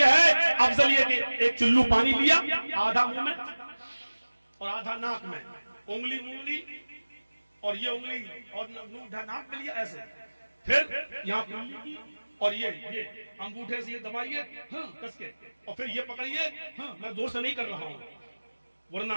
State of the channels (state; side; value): inverted; both; correlation -1.00